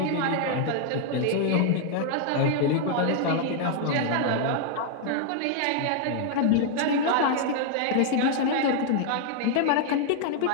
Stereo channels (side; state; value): both; different; correlation 0.00